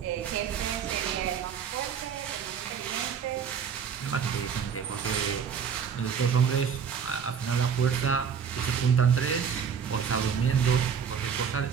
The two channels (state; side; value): quieter; left; 7.1 dB